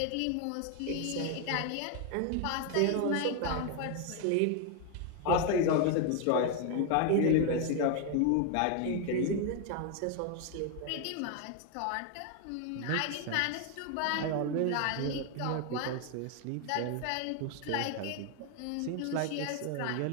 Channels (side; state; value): both; different; correlation 0.01